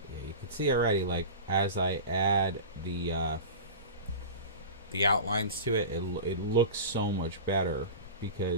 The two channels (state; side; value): inverted; both; correlation -0.31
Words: yeah, you can see already. Like as I add the outlines to it, it looks so much better